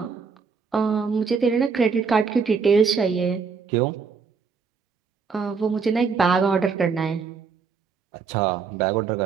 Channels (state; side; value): quieter; left; 5.4 dB